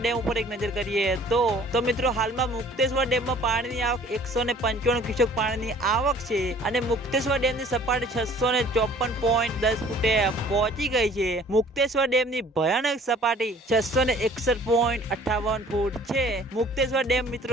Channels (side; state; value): both; normal; correlation 0.52